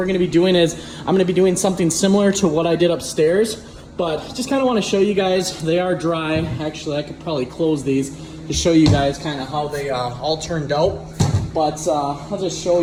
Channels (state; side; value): identical; both; correlation 1.00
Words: going to be doing is I'm going to be doing something similar to what I did upstairs, but just kind of want to show you guys. They are dry. Actually, I could probably close these to show you guys kind of how they all turned out. But I'll just show